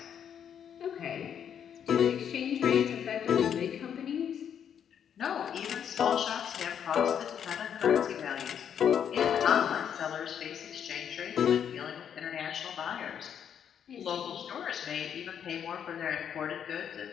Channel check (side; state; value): right; quieter; 8.5 dB